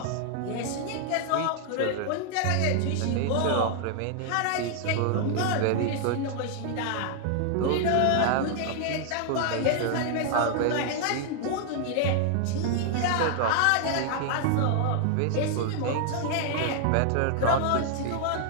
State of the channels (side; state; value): both; different; correlation 0.00